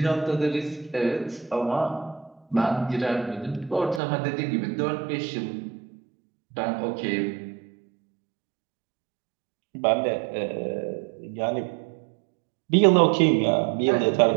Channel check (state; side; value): drops out; left; at 4.0 s